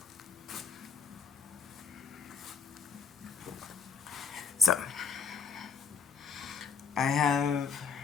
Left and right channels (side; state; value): right; quieter; 5.7 dB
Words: So I have,